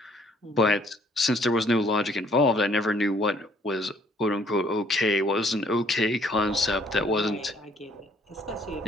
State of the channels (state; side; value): normal; both; correlation 0.62